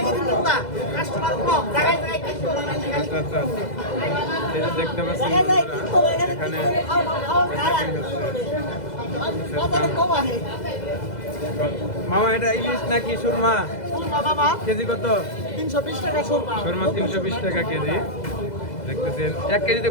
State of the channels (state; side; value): late; right; 2.0 ms